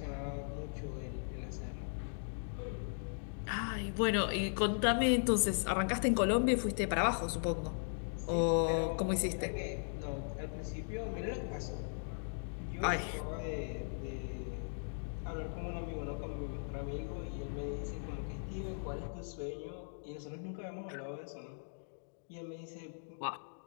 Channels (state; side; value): silent; right; digital silence